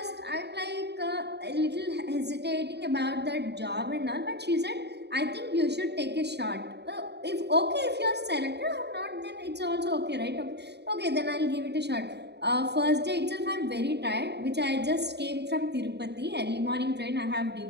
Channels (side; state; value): left; late; 0.49 ms